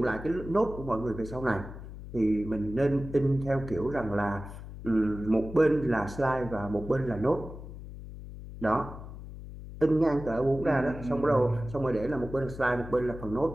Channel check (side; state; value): left; noise; hum, 12 dB below the sound